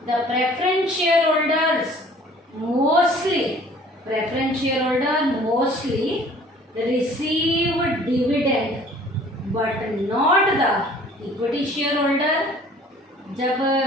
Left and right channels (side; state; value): both; normal; correlation 0.52